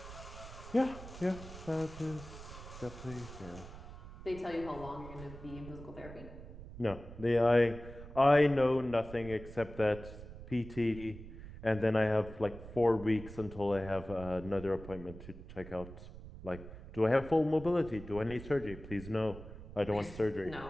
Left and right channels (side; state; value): right; noise; rumble, 14 dB below the sound